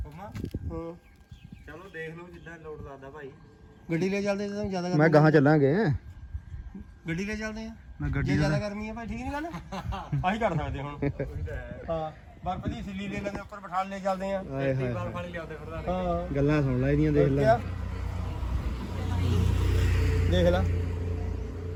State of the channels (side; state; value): both; identical; correlation 1.00